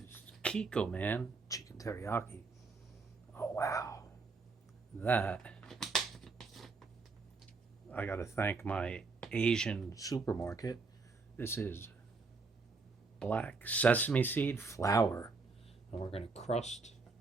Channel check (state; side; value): quieter; left; 4.3 dB